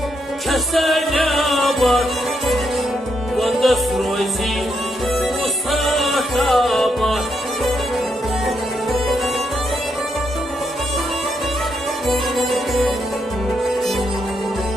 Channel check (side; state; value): both; normal; correlation 0.79